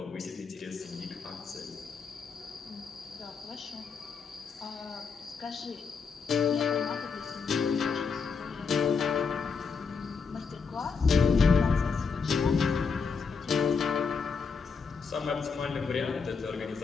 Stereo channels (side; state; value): right; quieter; 5.4 dB